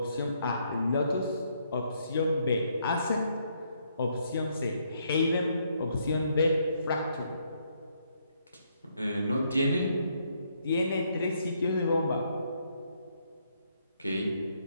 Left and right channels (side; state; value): both; inverted; correlation -0.73